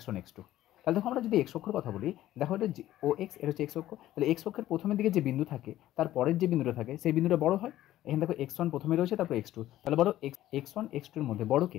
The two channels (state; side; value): quieter; right; 14.0 dB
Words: x2। তাহলে দেখো আমরা যদি এক্স অক্ষের কথা বলি, দেখো এটা ও এক্স, এটা হচ্ছে এক্স অক্ষ। তাহলে এক্স অক্ষের প্রথমের দিকে যে বিন্দু থাকে তার পরের যে বিন্দুটা থাকে সেই বিন্দুটা বড় হয়। এখানে দেখো x1 প্রথমে রয়েছে, তারপর x2। তাহলে বড় x1 x2 এর মধ্যে বড় কে?